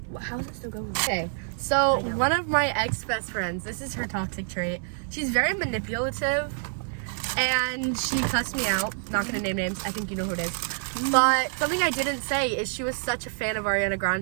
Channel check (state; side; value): silent; left; digital silence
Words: How is it still going? Okay, so one of my ex-best friends, this is her toxic trait. She's very manipulative, and she cussed me out. Not gonna name names, I think you know who it is. But something I didn't say is she was such a fan of Ariana